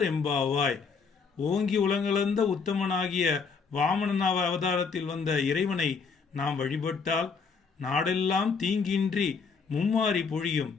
எம்பாவாய். ஓங்கி உலகளந்த உத்தமனாகிய வாமன அவதாரத்தில் வந்த இறைவனை நாம் வழிபட்டால் நாடெல்லாம் தீங்கின்றி மும்மாறி பொழியும்,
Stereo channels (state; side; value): quieter; right; 5.3 dB